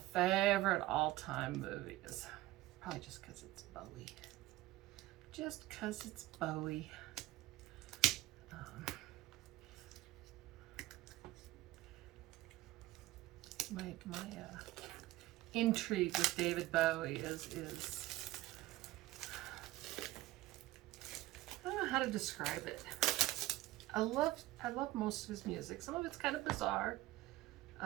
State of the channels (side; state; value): left; quieter; 17.2 dB